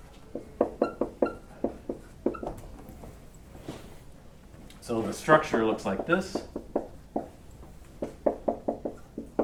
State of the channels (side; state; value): both; identical; correlation 1.00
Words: So the structure looks like this.